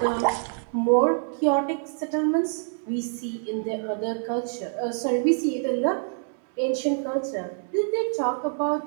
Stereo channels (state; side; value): silent; left; digital silence